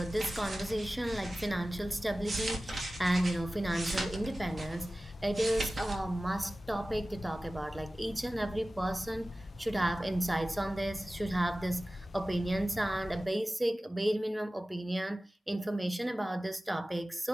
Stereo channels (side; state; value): both; normal; correlation 0.96